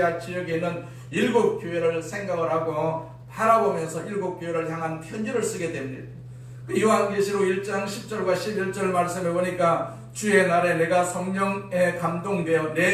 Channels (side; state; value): both; identical; correlation 1.00